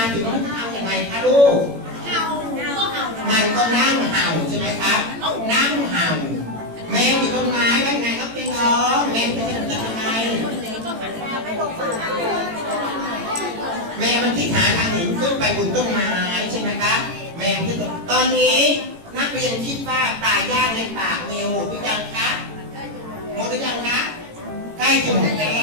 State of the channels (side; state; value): left; late; 18 ms